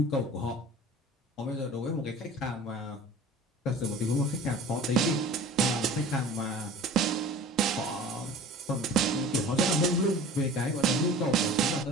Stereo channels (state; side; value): normal; both; correlation 0.42